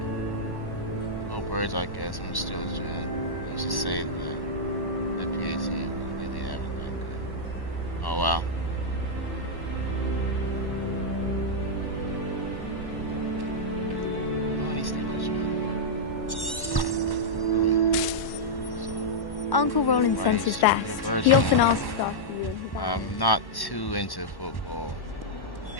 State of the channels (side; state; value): right; late; 1.1 ms